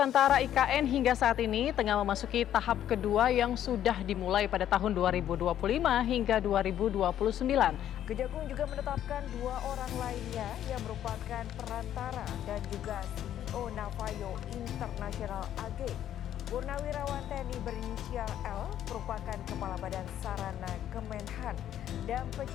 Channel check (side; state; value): right; quieter; 11.0 dB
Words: (IKN) hingga saat ini tengah memasuki tahap kedua yang sudah dimulai pada tahun 2025 hingga 2029. Kejagung juga menetapkan 2 orang lainnya yang merupakan perantara dan juga CEO Navayo International AG. Purnawirawan TNI berinisial L merupakan Kepala Badan Sarana Kemenhan dan